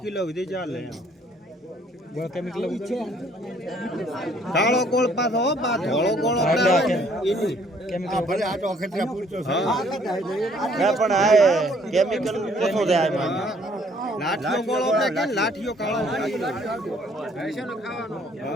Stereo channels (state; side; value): normal; both; correlation 0.62